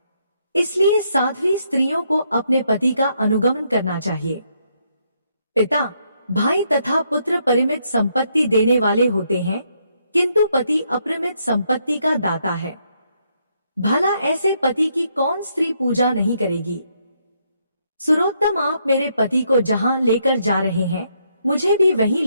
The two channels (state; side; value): inverted; both; correlation -0.75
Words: इसलिए साध्वी स्त्रियों को अपने पति का अनुगमन करना चाहिए। पिता, भाई तथा पुत्र परिमित संपत्ति देने वाले होते हैं, किंतु पति अपरिमित संपत्ति का दाता है। भला ऐसे पति की कौन स्त्री पूजा नहीं करेगी। सुरोत्तम, आप मेरे पति को जहां लेकर जा रहे हैं मुझे भी वहीं